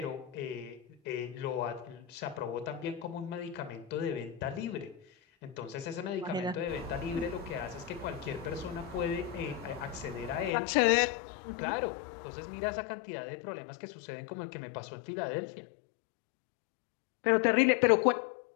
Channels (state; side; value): drops out; right; at 10.5 s